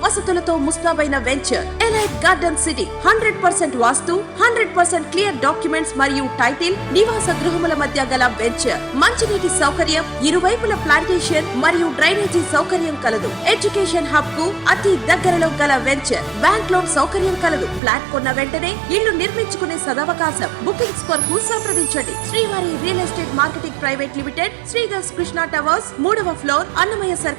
వసతులతో ముస్తాబైన వెంచర్ ఎలైట్ గార్డెన్ సిటీ. 100% వాస్తు, 100% క్లియర్ డాక్యుమెంట్స్ మరియు టైటిల్, నివాస గృహముల మధ్య గల వెంచర్. మంచినీటి సౌకర్యం, ఇరువైపుల ప్లాంటేషన్ మరియు డ్రైనేజీ సౌకర్యం కలదు. ఎడ్యుకేషన్ హబ్ కు అతి దగ్గరలో గల వెంచర్. బ్యాంక్ లోన్ సౌకర్యం కలదు. ఫ్లాట్ కొన్న వెంటనే ఇల్లు నిర్మించుకునే సదవకాశం. బుకింగ్స్ కొరకు సంప్రదించండి. Srivari real estate marketing private limited, Sridhar's Krishna towers, 3వ floor, Annamayya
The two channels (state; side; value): drops out; left; at 17.8 s